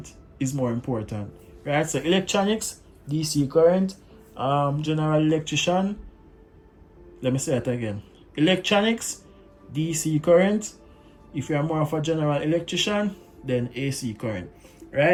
is more important, right? So electronics, DC current, general electrician, let me say it again, electronics, DC current. If you're more of a general electrician, then AC current,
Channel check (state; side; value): identical; both; correlation 1.00